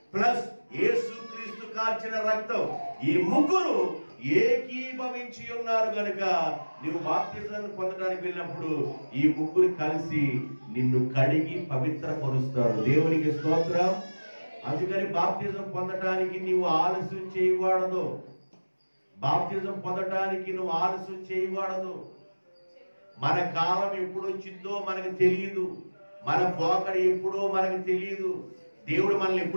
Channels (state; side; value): inverted; both; correlation -1.00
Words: ప్లస్ యేసుక్రీస్తు కార్చిన రక్తం, ఈ ముగ్గురు ఏకీభవించి ఉన్నారు గనుక నువ్వు బాప్తిజాన్ని పొందడానికి వెళ్ళినప్పుడు ఈ ముగ్గురు కలిసి నిన్ను కడిగి పవిత్రపరుస్తారు. దేవునికి స్తోత్రం. అందుకని బాప్తిజం పొందటానికి నీవు ఆలస్యం చేయకూడదు. బాప్తిజం పొందటానికి నువ్వు ఆలస్యం చేయకూడదు. మన కాలం ఎప్పుడు వచ్చిందో మనకు తెలియదు, మన పోకడ ఎప్పుడో మనకు తెలియదు, దేవుడు మనల్ని